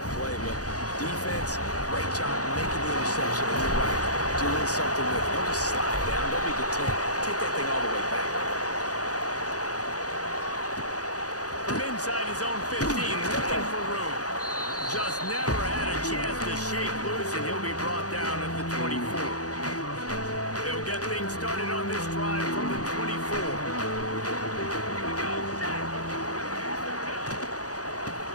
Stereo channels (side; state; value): right; late; 0.67 ms